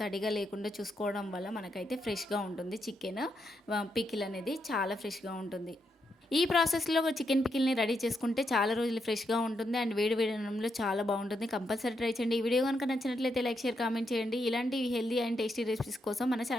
తడిగా లేకుండా చూసుకోవడం వల్ల మనకైతే ఫ్రెష్గా ఉంటుంది. చికెన్ పికిల్ అనేది చాలా ఫ్రెష్గా ఉంటుంది. ఈ ప్రాసెస్లో చికెన్ పికిల్ని రెడీ చేసుకుంటే చాలా రోజులు ఫ్రెష్గా ఉంటుంది అండ్ వేడి అన్నంలో చాలా బాగుంటుంది. కంపల్సరీ ట్రై చేయండి. ఈ వీడియో కనుక నచ్చినట్లయితే లైక్, షేర్, కామెంట్ చేయండి. ఇలాంటి హెల్దీ అండ్ టేస్టీ రెసిపీస్ కోసం మన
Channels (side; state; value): both; normal; correlation 0.81